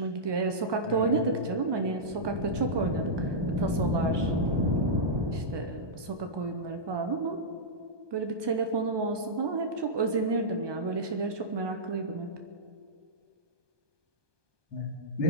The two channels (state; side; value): late; left; 1.2 ms